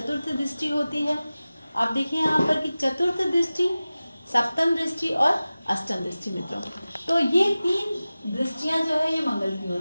दृष्टि होती है। आप देखिए यहाँ पर कि चतुर्थ दृष्टि, सप्तम दृष्टि और अष्टम दृष्टि मित्रों। तो ये 3 दृष्टियां जो है ये मंगल की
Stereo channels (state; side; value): inverted; both; correlation -0.96